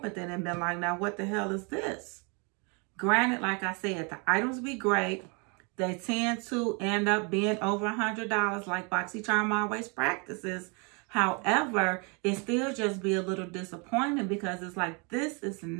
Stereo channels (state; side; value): quieter; left; 33.2 dB